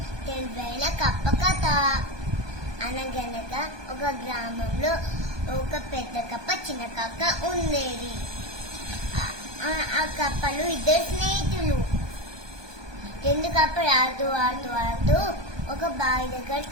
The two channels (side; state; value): left; late; 1.2 ms